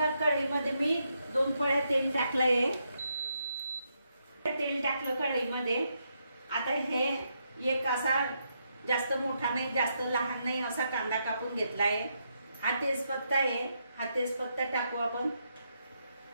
कढईमध्ये मी 2 पळ्या तेल टाकलंय। तेल टाकलं कढईमध्ये। आता हे एक असा जास्त मोठा नाही जास्त लहान नाही असा कांदा कापून घेतलाय। हा तेजपत्ता आहे, हा तेजपत्ता टाकू आपण।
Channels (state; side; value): inverted; both; correlation -0.80